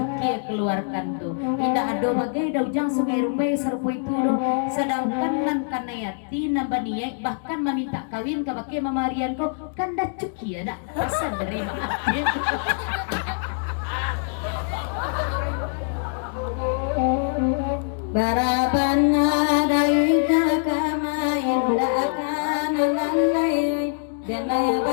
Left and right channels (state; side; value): silent; right; digital silence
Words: keluarkan tuh tidak ada bagai daujang sungai Rumbai serupa itu doh sedangkan nan kanayati nambaniai bahkan meminta kawin ke bagai mamarian ko kanda cukie ada pesan dari maaf Barabana dari kama indah akan lalai jangan